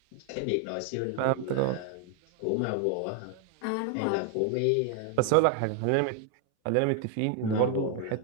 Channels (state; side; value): different; both; correlation 0.01